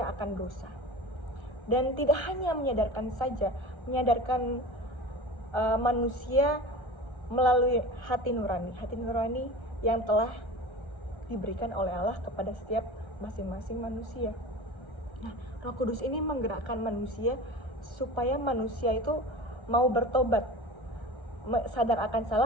akan dosa. Dan tidak hanya menyadarkan saja, menyadarkan manusia melalui hati nurani yang telah diberikan oleh Allah kepada setiap masing-masing manusia. Nah, Roh Kudus ini menggerakkan manusia supaya manusia itu mau bertobat, sadar akan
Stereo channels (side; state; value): left; late; 1.3 ms